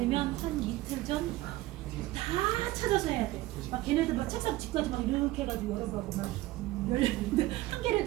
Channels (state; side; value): quieter; left; 17.7 dB